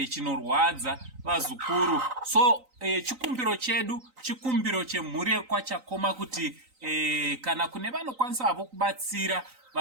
chinorwadza vazukuru. So chikumbiro chedu, chikumbiro chemhuri yekwachakoma kuti kana kune vanokwanisa havo kubatsira,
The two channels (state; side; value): late; left; 3.9 ms